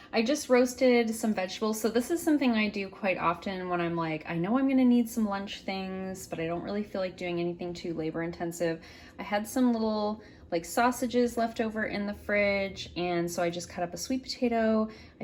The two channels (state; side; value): identical; both; correlation 1.00